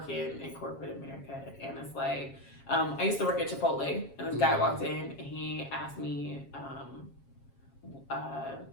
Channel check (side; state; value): right; late; 7.3 ms